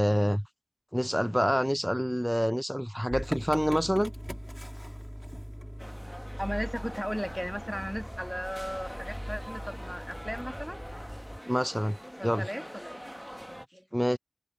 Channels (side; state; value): both; identical; correlation 1.00